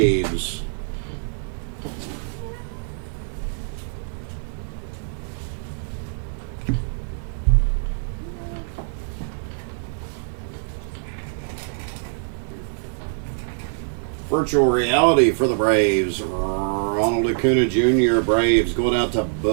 Virtual reality for the Braves. Ronald Acuna Jr. Braves going out to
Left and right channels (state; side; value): silent; left; digital silence